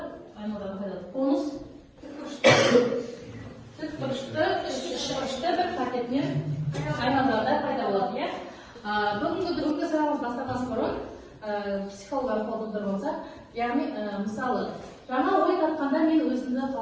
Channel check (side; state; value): both; identical; correlation 1.00